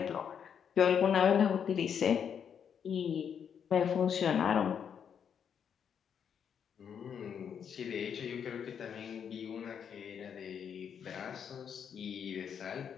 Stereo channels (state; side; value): quieter; right; 7.8 dB